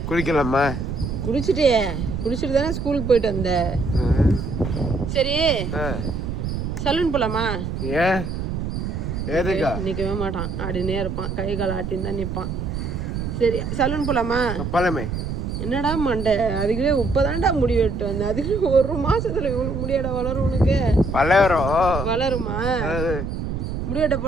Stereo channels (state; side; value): noise; right; rumble, 4 dB below the sound